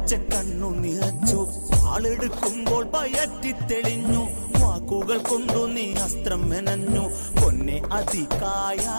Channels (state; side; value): inverted; both; correlation -1.00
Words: കണ്ണു നിറച്ചു. ആളെടുക്കുമ്പോൾ പയറ്റിത്തെളിഞ്ഞു, വാക്കുകൾ കൊണ്ടു നീ അസ്ത്രം മെനഞ്ഞു. പൊന്നെ അതികായ